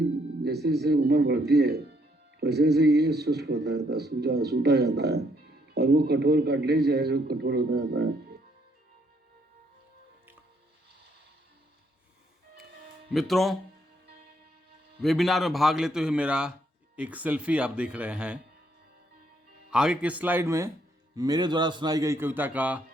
जैसे जैसे उम्र बढ़ती है वैसे वैसे ये शुष्क होता रहता है, सूता जाता है, और वो कठोर कार्टिलेज है जो कठोर होता जाता है। मित्रों, वेबिनार में भाग लेते हुए मेरा एक सेल्फी आप देख रहे हैं। आगे के स्लाइड में मेरे द्वारा सुनाई गई कविता का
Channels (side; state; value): both; normal; correlation 0.71